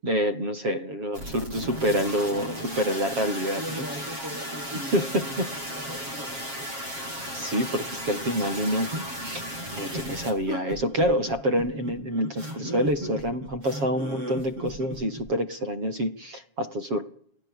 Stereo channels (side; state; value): left; late; 7.3 ms